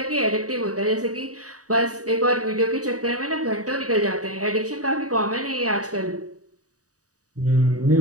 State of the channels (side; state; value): left; late; 0.66 ms